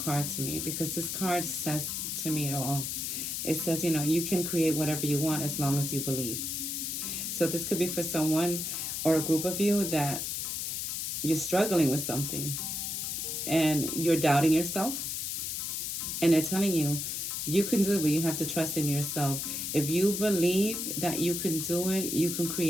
to me because this card says to me it all. It says, you can create whatever you want as long as you believe. So this could be for someone or a group of you that you're struggling with something and you're doubting yourself, and they're telling you you can do it, but you have to trust in yourself. If you believe that you can do it, you can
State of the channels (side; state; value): left; noise; hiss, 3 dB below the sound